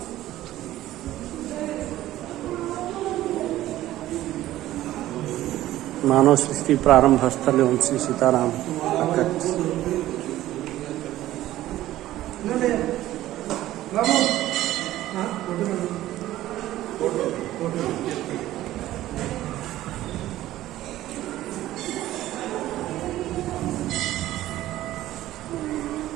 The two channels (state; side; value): quieter; left; 14.7 dB